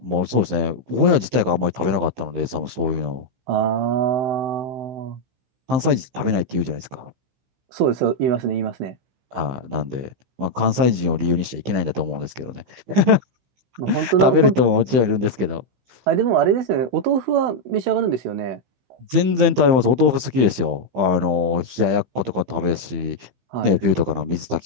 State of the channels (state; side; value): late; left; 16 ms